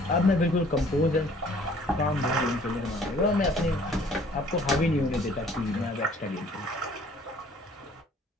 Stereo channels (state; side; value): normal; both; correlation 0.56